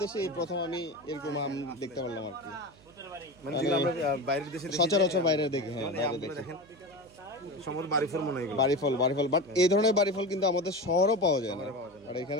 দেশে এই প্রথম আমি এরকম আম দেখতে পারলাম আর কি। মানে যেগুলো আমরা বাইরের দেশে সচরাচর বাইরে দেখি। হ্যাঁ, বাইরে দেখি সম্ভবত বাড়িফল মনে হয় এগুলো। বাড়িফল বাট এই ধরনের বাড়িফল কিন্তু আমাদের শহরও পাওয়া যায় না। আর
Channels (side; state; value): right; noise; hum, 26 dB below the sound